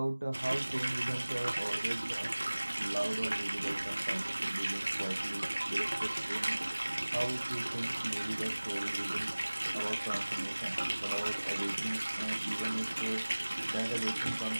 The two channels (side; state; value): both; inverted; correlation -1.00